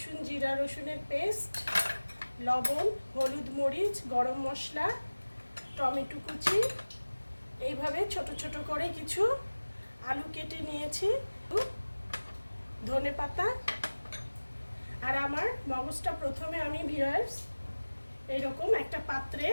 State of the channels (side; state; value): both; inverted; correlation -1.00